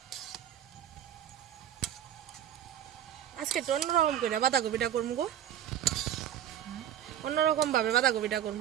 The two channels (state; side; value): quieter; left; 10.6 dB